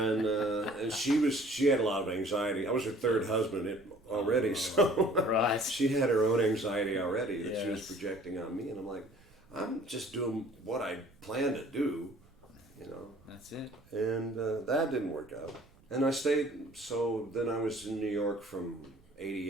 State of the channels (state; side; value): noise; right; rumble, 29 dB below the sound